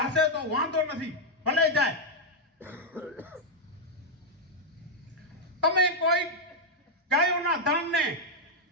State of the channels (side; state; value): both; normal; correlation -0.01